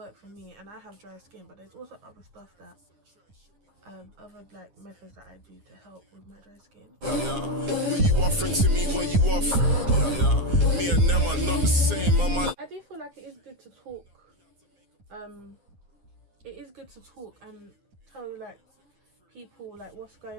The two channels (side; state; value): left; late; 9.8 ms